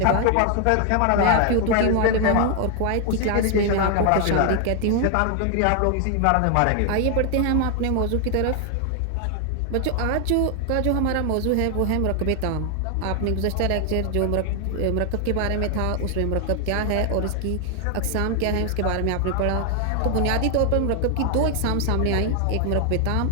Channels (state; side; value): different; both; correlation 0.00